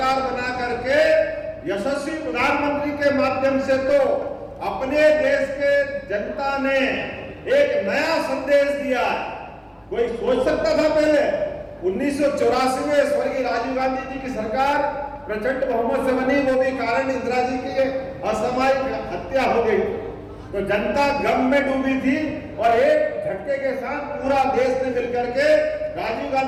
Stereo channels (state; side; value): identical; both; correlation 1.00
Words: बना करके यशस्वी प्रधानमंत्री के माध्यम से तो अपने देश के जनता ने एक नया संदेश दिया। कोई सोच सकता था पहले 1984 में स्वर्गीय राजीव गांधी जी की सरकार प्रचंड बहुमत से बनी, वो भी कारण इंदिरा जी की असामयिक हत्या हो गई, तो जनता गम में डूबी थी और एक झटके के साथ पूरा देश ने मिलकर के राजीव